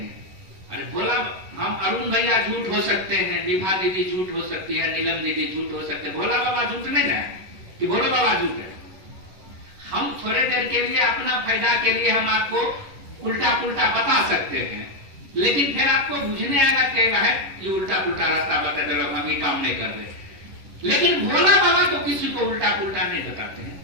अरे बोला हम अरुण भैया झूठ हो सकते हैं, विभा दीदी झूठ हो सकती है, नीलम दीदी झूठ हो सकते हैं, भोला बाबा झूठ नहीं है कि भोला बाबा झूठ है। हम थोड़े देर के लिए अपना फायदा के लिए हम आपको उल्टा पुल्टा बता सकते हैं, लेकिन फिर आपको बुझने आएगा क्या है ये उल्टा पुल्टा रास्ता बता दे, हम ये काम नहीं कर रहे। लेकिन भोला बाबा तो किसी को उल्टा पुल्टा नहीं बताते हैं।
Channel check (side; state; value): left; late; 11 ms